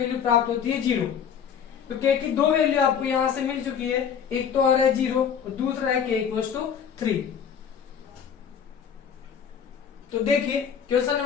प्राप्त होती है 0। तो k की दो वैल्यू आपको यहां से मिल चुकी है, एक तो आ रहा है 0 और दूसरा है k इक्वल टू 3। तो देखिए क्वेश्चन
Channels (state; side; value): quieter; right; 7.8 dB